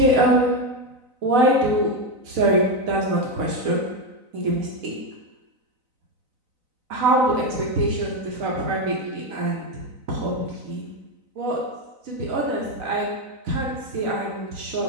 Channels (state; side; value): late; left; 4.0 ms